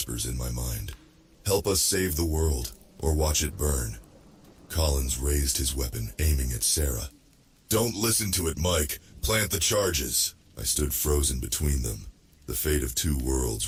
in my mind. "Help us save the world, or watch it burn." Collins raised his weapon, aiming at Sarah. "Don't listen to it, Mike. Plant the charges." I stood frozen between them, the fate of two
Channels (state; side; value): identical; both; correlation 1.00